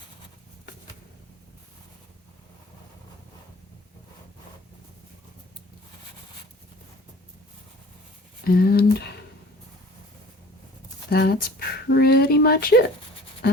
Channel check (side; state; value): both; normal; correlation 0.45